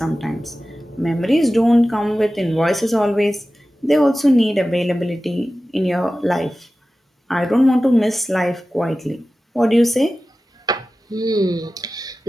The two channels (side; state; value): both; normal; correlation 0.95